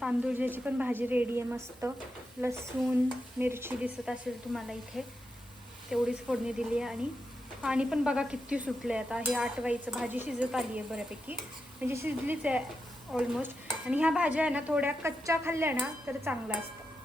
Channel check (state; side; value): normal; both; correlation 0.87